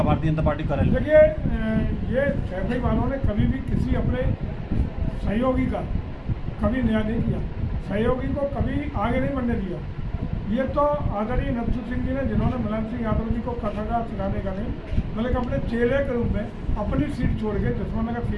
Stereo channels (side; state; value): both; identical; correlation 1.00